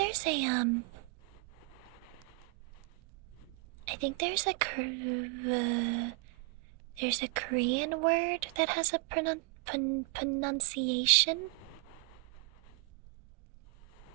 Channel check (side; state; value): left; quieter; 29.3 dB